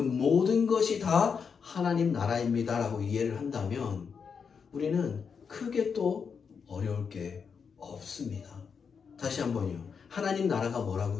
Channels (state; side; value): quieter; right; 6.1 dB